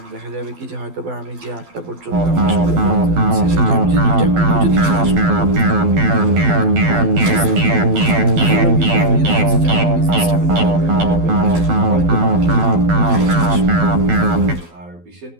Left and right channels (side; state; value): left; late; 12 ms